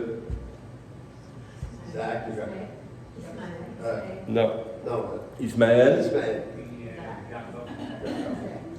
Isaac. Non. Non. Ismaël. Ismaël.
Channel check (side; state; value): both; identical; correlation 1.00